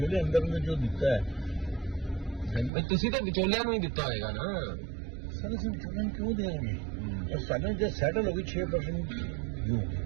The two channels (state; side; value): drops out; left; at 2.7 s